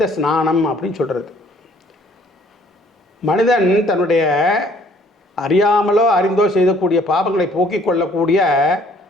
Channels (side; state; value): both; normal; correlation 0.60